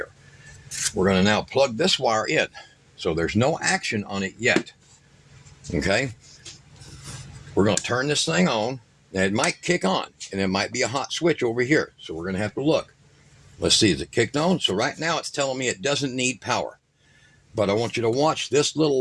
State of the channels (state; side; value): identical; both; correlation 1.00